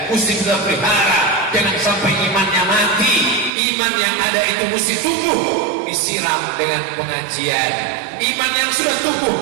mesti kita pelihara. Jangan sampai imannya mati. Iman yang ada itu mesti tumbuh, disiram dengan pengajian. Iman yang sudah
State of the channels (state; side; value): drops out; left; at 3.5 s